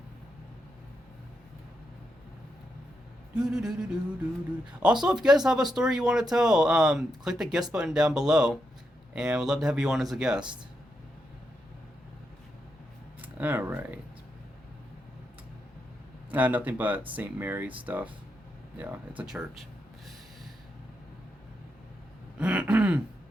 Also, if you guys have a story you want to tell, click the guest button down below, and we'd love to have you on as a guest. All right. Nothing but St. Mary's stuff. Yeah, it's a church.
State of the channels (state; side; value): normal; both; correlation 0.83